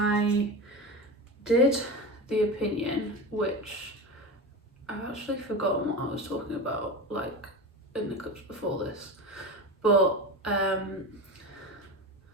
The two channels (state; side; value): normal; both; correlation 0.25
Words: did the opinion, which I've actually forgotten what I was talking about, like in the clips before this, but